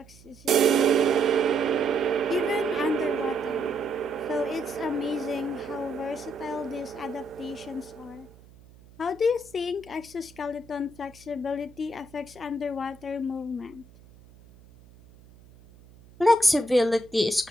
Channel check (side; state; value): right; noise; hum, 24 dB below the sound